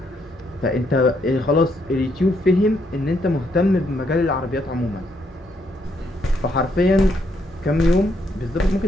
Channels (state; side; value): normal; both; correlation 0.74